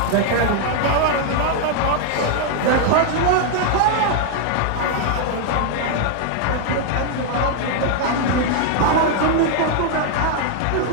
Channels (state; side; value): different; both; correlation 0.00